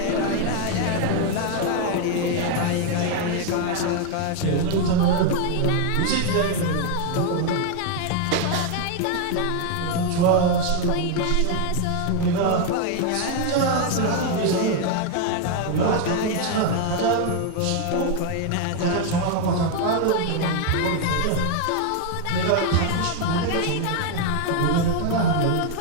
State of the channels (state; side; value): different; both; correlation 0.00